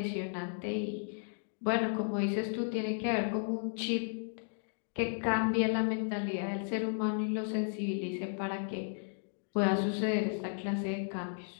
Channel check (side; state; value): right; silent; digital silence